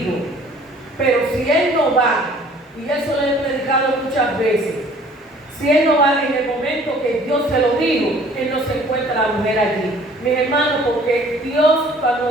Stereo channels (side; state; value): both; normal; correlation 0.53